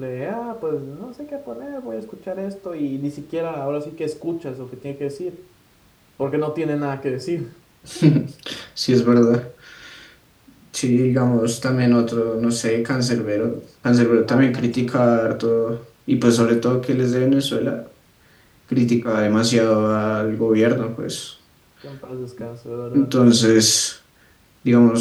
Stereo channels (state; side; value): identical; both; correlation 1.00